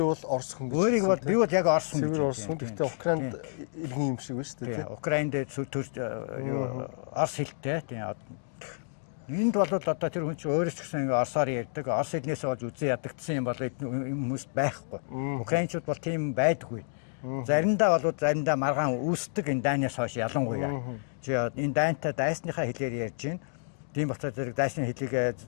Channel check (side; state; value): right; silent; digital silence